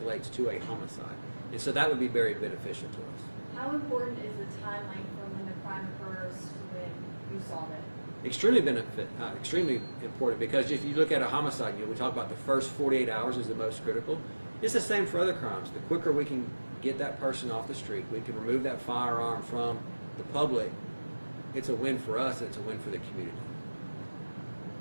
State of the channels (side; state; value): both; inverted; correlation -1.00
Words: to a homicide. And so that would be very beneficial to us. How important is the time length from when the crime occurs to when you solve it? Extremely important, because if you look at a homicide, we talk about the first 48 hours is the most critical. It's the same for other crimes. The quicker we can get that person off the street, we can remove that firearm from the public, it's a win for us and it's a win for the community.